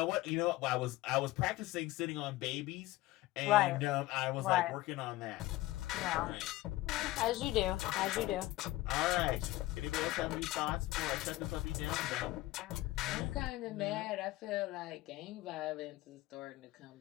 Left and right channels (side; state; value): right; quieter; 17.9 dB